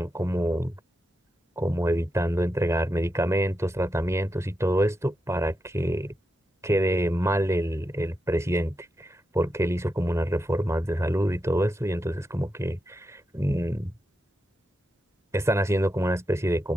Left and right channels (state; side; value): normal; both; correlation 0.87